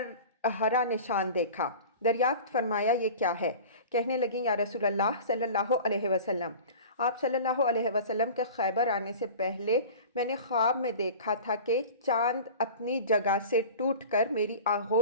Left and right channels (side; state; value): both; inverted; correlation -0.37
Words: ہرا نشان دیکھا۔ دریافت فرمایا، یہ کیا ہے؟ کہنے لگیں، یا رسول اللہ صلی اللہ علیہ وسلم، آپ صلی اللہ علیہ وسلم کے خیبر آنے سے پہلے میں نے خواب میں دیکھا تھا کہ چاند اپنی جگہ سے ٹوٹ کر میری